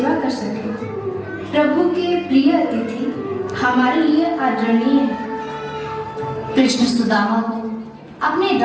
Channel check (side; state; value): both; identical; correlation 1.00